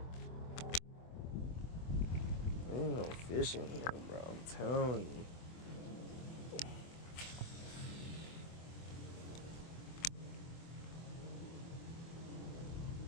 Ain't no fish in here, bro. I'm telling you.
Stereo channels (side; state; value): right; late; 24 ms